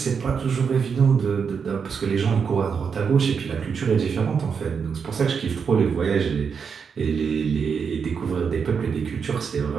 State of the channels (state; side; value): quieter; left; 6.2 dB